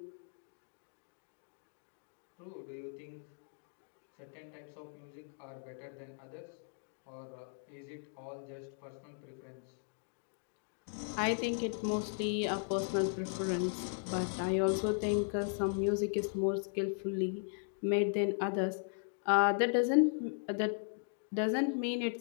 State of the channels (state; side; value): silent; right; digital silence